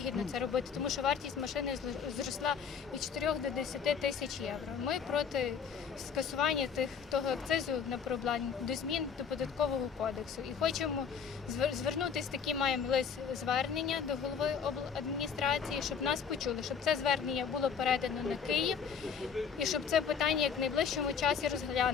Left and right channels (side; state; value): right; quieter; 6.7 dB